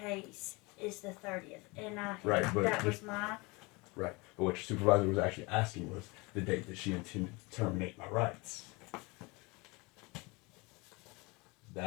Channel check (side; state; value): right; quieter; 26.0 dB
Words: is the 30th. And that was my... Right. But what your supervisor was actually asking was the date that she intended to terminate my rights.